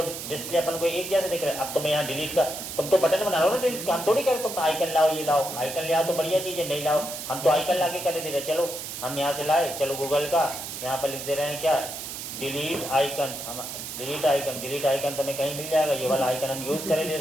डिस्प्ले अपन को एक जैसे दिख रहा है। अब तुम्हें यहाँ डिलीट का, तुम तो बटन बना रहे हो ना डिलीट का, हम थोड़ी करें तुम आइकन लाओ, ये लाओ, आइकन ले आओ तो बढ़िया चीज़ है, नहीं लाओ हम तो आइकन ला के कर दे रहे। चलो हम यहाँ से लाए, चलो गूगल का यहाँ पर लिख दे रहे हैं क्या, डिलीट आइकन, हम डिलीट आइकन तुम्हें कहीं मिल जाएगा, ये वाला आइकन हम यूज़ करे ले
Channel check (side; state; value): right; noise; hiss, 8 dB below the sound